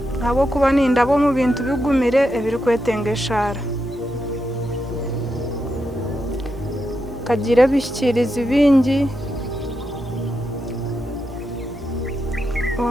abo kuba nindabo mu bintu bigumire ebiri kwetengeshara kagira bishikiriza ibingi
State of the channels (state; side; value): normal; both; correlation 0.85